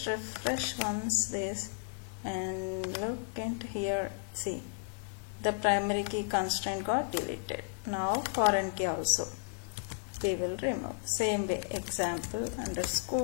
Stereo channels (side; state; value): right; silent; digital silence